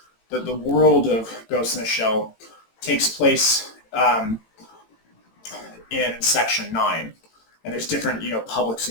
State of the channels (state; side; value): late; right; 18 ms